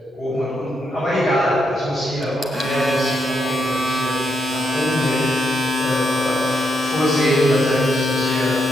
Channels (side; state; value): both; normal; correlation 0.80